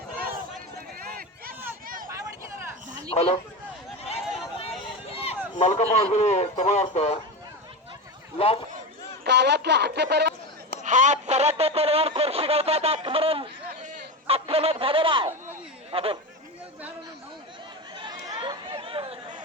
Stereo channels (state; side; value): normal; both; correlation 0.21